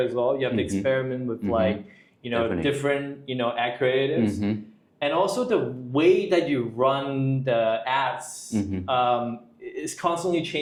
well. You have to experiment with like, different, ad creatives. And also the way that you run the ads is constantly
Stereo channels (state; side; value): identical; both; correlation 1.00